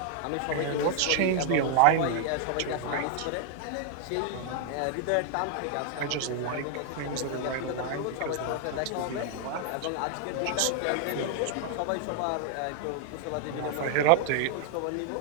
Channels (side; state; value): both; different; correlation 0.00